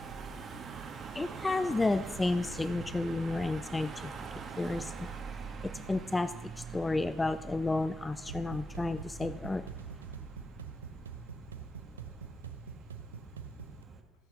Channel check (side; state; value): both; normal; correlation 0.89